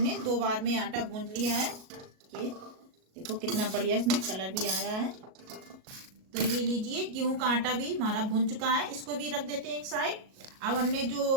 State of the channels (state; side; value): late; left; 37 ms